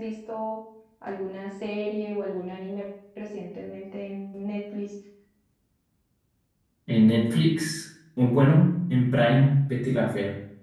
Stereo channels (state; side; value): identical; both; correlation 1.00